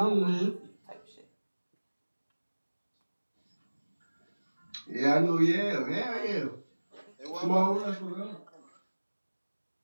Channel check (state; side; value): inverted; both; correlation -1.00